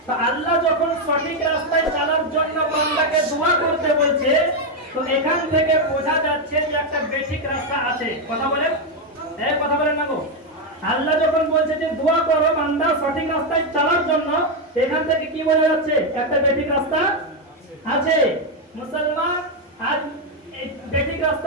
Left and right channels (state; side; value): normal; both; correlation 0.04